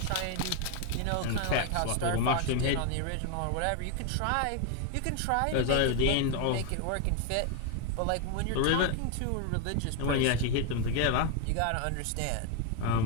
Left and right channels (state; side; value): different; both; correlation 0.01